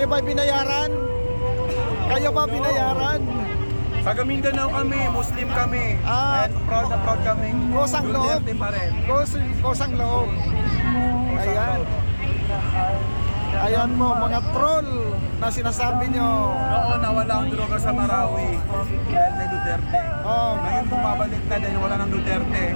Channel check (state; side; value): inverted; both; correlation -1.00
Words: ba binayaran? Kayo ba binayaran? Taga Mindanao kami, Muslim kami. Ah, And proud na proud kami. kusang loob. Duterte pa rin. Kusang loob. Ayan. Ayan mo mga troll na sinasabi nyo. Oo, nawala ang droga sa Marawi. Dahil kay Duterte. Oh, Ngayon bumabalik na dahil wala ng Duterte.